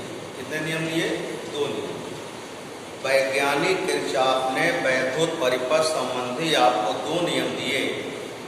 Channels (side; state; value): both; identical; correlation 1.00